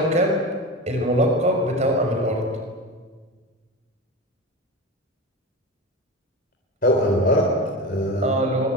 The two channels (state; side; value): normal; both; correlation 0.25